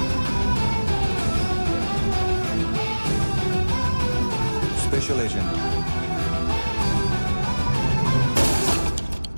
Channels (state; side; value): inverted; both; correlation -1.00